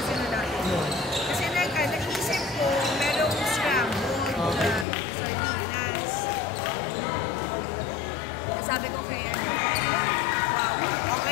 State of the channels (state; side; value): drops out; right; at 4.9 s